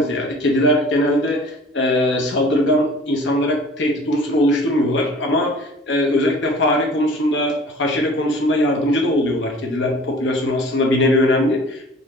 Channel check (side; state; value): both; normal; correlation 0.46